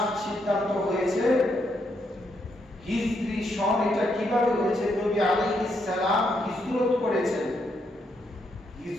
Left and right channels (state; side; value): normal; both; correlation 0.77